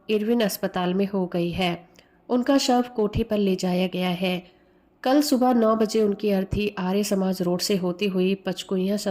इरविन अस्पताल में हो गई है। उनका शव कोठी पर ले जाया गया है। कल सुबह 9 बजे उनकी अर्थी आर्य समाज रोड से होती हुई पचकुइयां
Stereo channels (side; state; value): both; identical; correlation 1.00